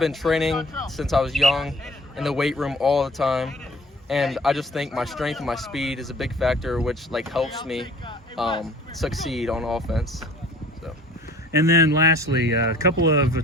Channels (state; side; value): normal; both; correlation 0.50